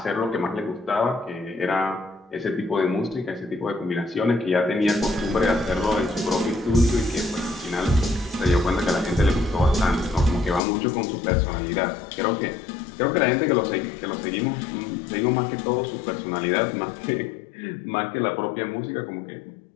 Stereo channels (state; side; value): drops out; right; at 10.6 s